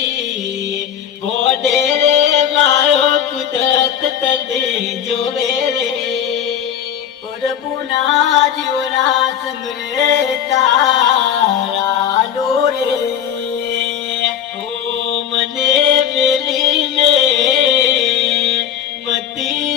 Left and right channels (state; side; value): quieter; right; 9.2 dB